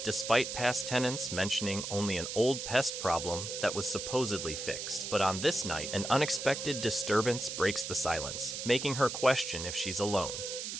despite past tenants mentioning only an old pest problem that was supposedly fixed. But on this night, an unexpected disturbance breaks the silence, making her question if she's alone.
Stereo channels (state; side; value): noise; right; hiss, 5 dB below the sound